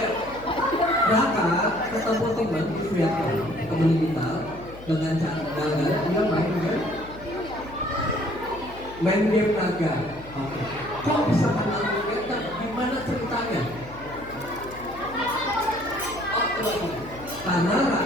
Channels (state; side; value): noise; left; hum, 17 dB below the sound